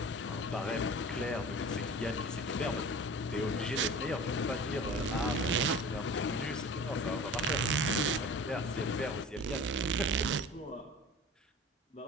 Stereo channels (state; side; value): normal; both; correlation 0.39